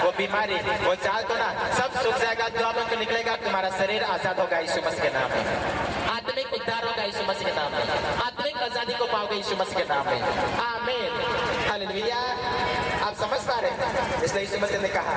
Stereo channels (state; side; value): identical; both; correlation 1.00